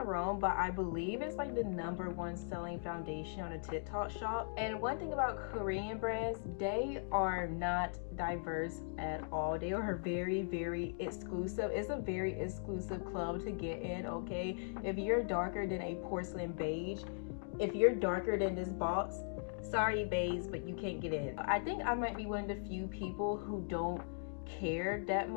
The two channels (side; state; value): right; silent; digital silence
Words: wrong, but I believe it's like the #1 selling foundation on the TikTok shop. And one thing about Korean brands, they are not diverse at all. They are very exclusive. It's a very exclusive club to get in, okay? If you're darker than a porcelain beige, if you're darker than this box, sorry babes, but you can't get in. I think I might be one of the few people who don't care that